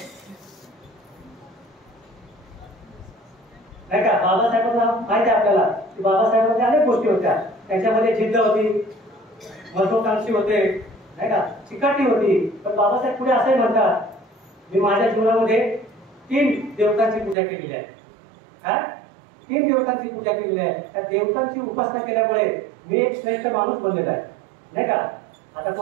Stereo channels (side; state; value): left; drops out; at 17.4 s